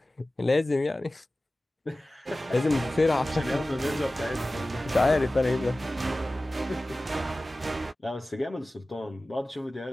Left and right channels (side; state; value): both; normal; correlation 0.96